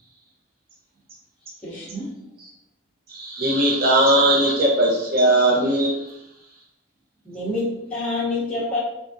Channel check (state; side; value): normal; both; correlation 0.00